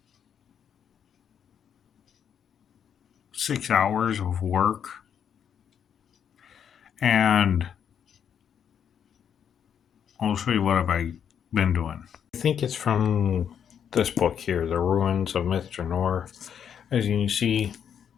6 hours of work. And I'll show you what I've been doing. I think it's from this book here, The Ruins of Myth Drannor. As you can see,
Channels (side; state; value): right; quieter; 8.3 dB